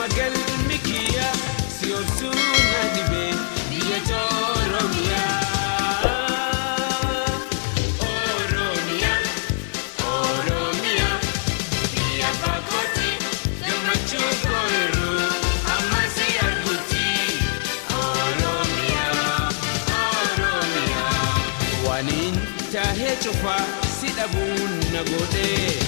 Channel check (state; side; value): silent; right; digital silence